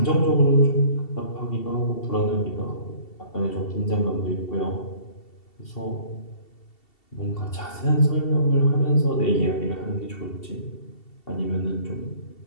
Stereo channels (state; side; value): late; right; 2.7 ms